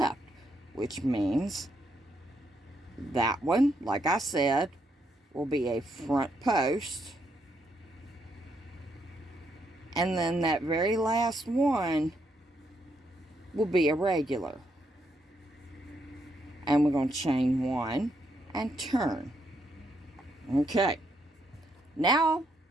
which means that one, like I said, will be a front post And then that very last one will be a regular. And we're going to chain 1 and turn. Okay. Now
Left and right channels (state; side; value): normal; both; correlation 0.76